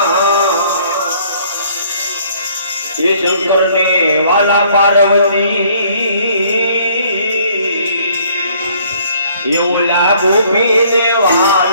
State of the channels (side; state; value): both; inverted; correlation -0.60